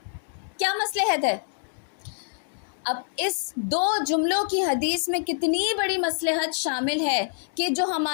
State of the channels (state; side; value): silent; right; digital silence